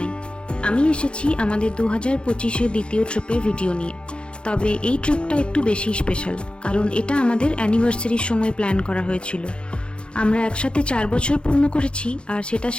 আমি এসেছি আমাদের 2025-এর দ্বিতীয় ট্রিপের ভিডিও নিয়ে। তবে এই ট্রিপটা একটু বেশি স্পেশাল, কারণ এটা আমাদের অ্যানিভার্সারির সময় প্ল্যান করা হয়েছিল। আমরা একসাথে 4 বছর পূর্ণ করেছি, আর সেটা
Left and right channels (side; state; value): right; late; 0.055 ms